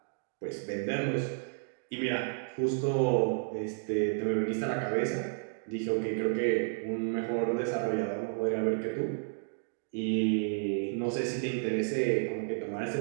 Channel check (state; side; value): silent; left; digital silence